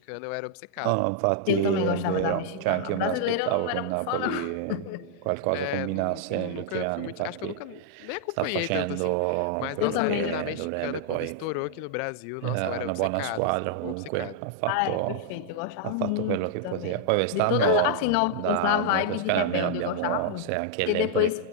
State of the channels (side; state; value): both; different; correlation -0.01